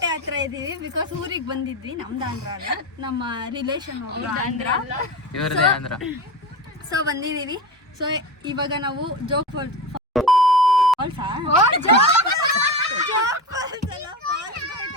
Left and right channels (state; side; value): normal; both; correlation 0.24